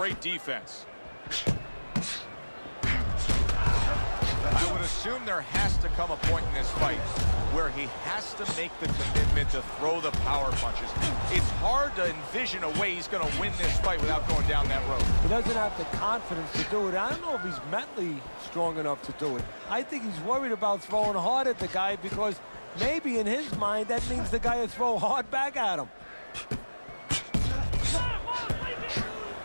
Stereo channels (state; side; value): inverted; both; correlation -1.00